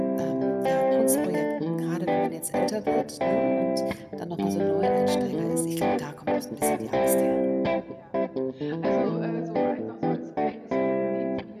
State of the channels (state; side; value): identical; both; correlation 1.00